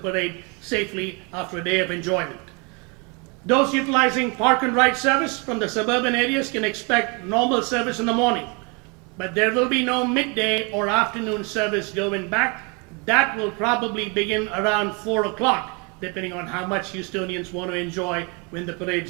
safely after a day of enjoyment. Those utilizing park and ride service from the suburban areas can expect normal service in the morning, but there will be no midday or afternoon service going back. That will probably begin around 4 o'clock, depending on how much Houstonians want to enjoy when the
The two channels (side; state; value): left; quieter; 31.8 dB